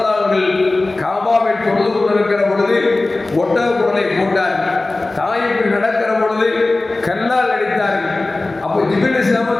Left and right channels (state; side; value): quieter; right; 3.1 dB